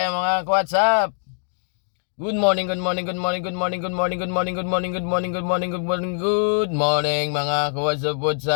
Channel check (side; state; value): right; silent; digital silence